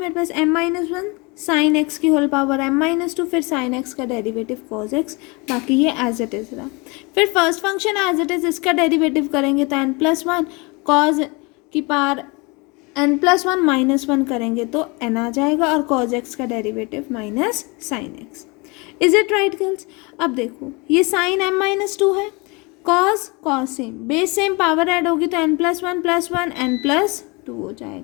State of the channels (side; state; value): right; quieter; 27.8 dB